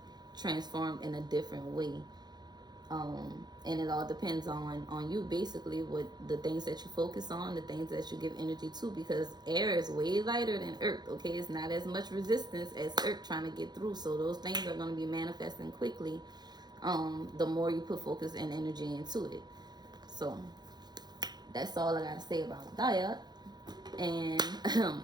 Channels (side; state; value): left; late; 0.20 ms